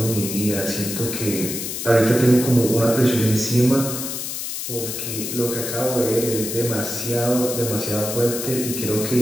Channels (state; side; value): noise; left; hiss, 5 dB below the sound